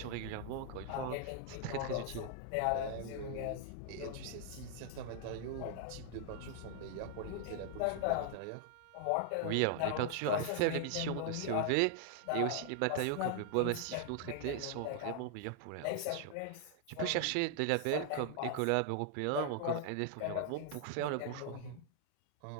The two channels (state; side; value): different; both; correlation 0.00